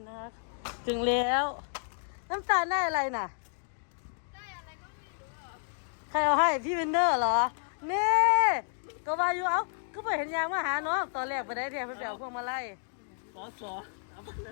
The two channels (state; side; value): silent; right; digital silence